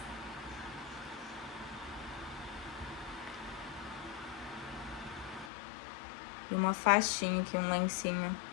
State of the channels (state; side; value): drops out; right; at 5.5 s